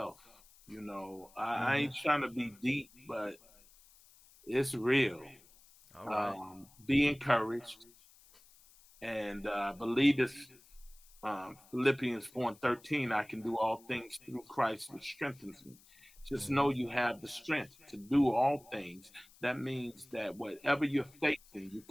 You know, I ain't trying to be deep, but it's real. All right. Be encouraged, and believe this. Philippians 4:13, I can do all things through Christ, which strengthens me. Just know you have the strength to do all things. That means that whatever you're facing, you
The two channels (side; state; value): left; noise; hiss, 26 dB below the sound